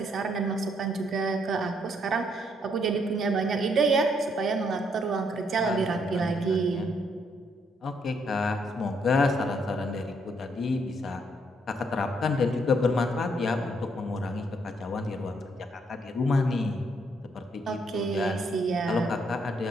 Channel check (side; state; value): both; normal; correlation 0.72